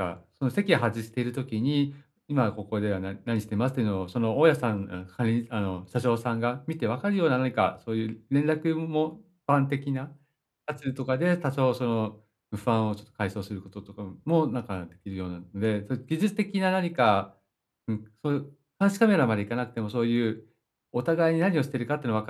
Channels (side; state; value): both; identical; correlation 1.00